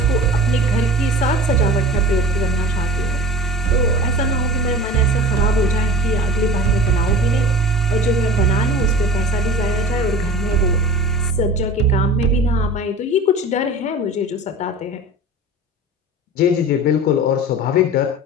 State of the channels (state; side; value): normal; both; correlation 0.37